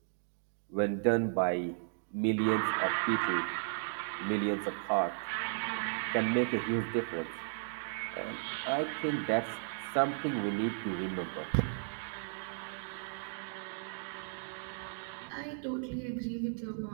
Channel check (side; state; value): left; silent; digital silence